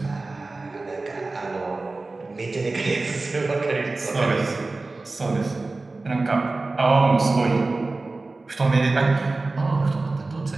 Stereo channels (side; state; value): left; quieter; 3.4 dB